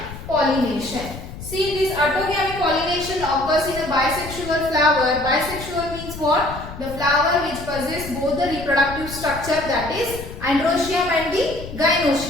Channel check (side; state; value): left; noise; rumble, 12 dB below the sound